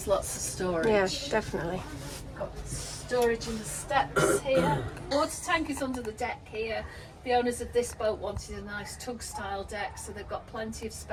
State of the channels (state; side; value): identical; both; correlation 1.00